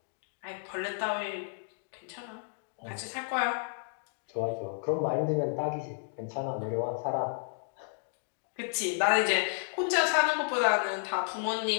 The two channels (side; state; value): right; silent; digital silence